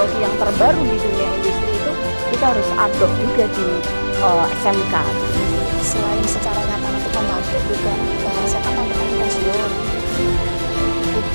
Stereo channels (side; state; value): both; inverted; correlation -1.00